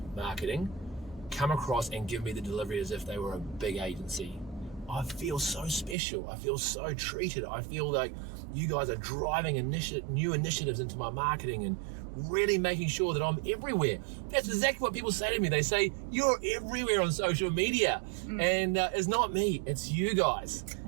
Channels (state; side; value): drops out; left; at 6.0 s